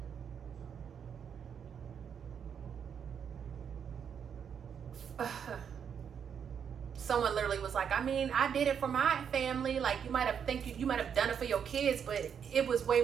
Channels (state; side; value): quieter; left; 7.6 dB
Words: someone literally was like, I mean, I did it for my family. Like, you might have done it for your kids, but it was way